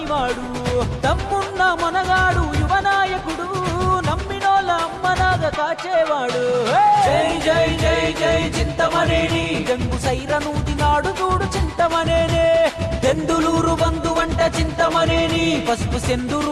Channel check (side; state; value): both; identical; correlation 1.00